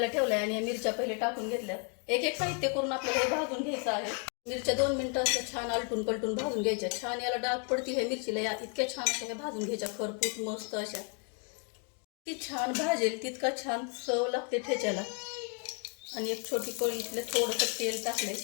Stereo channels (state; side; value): quieter; right; 39.0 dB